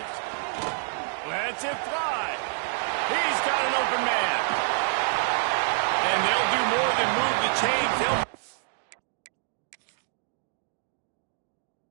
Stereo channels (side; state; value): left; silent; 60 dB below the other